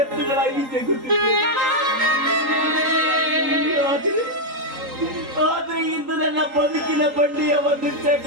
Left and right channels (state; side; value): late; left; 3.8 ms